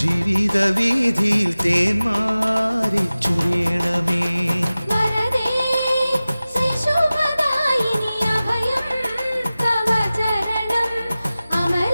ജീവിത വീതിയിൽ തേന്മാരി ചൊരിയണമേ.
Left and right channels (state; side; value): inverted; both; correlation -0.97